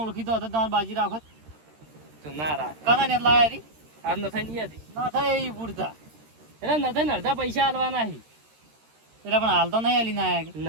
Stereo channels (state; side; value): late; left; 13 ms